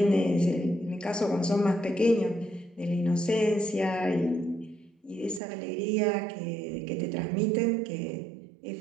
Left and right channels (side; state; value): left; drops out; at 5.4 s